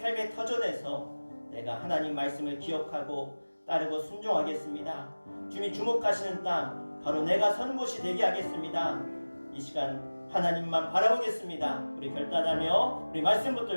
터전에서 내가 하나님 말씀을 기억하고 따르고 순종하겠습니다. 주님이 주목하시는 땅, 바로 내가 선 곳이 되게 하겠습니다. 이 시간 하나님만 바라보겠습니다. 우리 결단하며 우리 말씀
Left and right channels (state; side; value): inverted; both; correlation -1.00